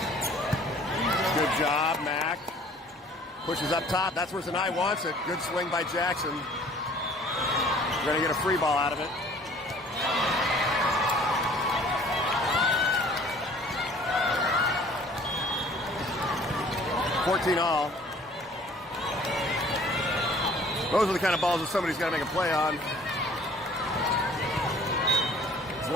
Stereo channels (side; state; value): both; normal; correlation 0.52